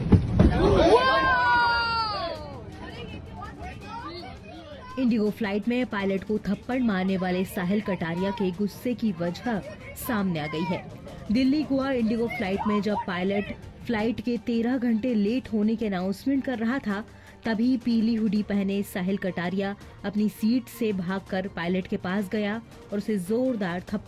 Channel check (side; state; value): both; identical; correlation 1.00